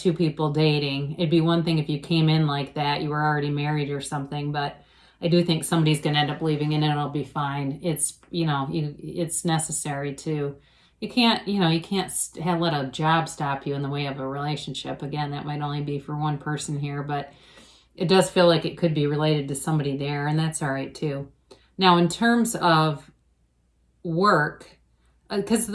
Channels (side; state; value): both; identical; correlation 1.00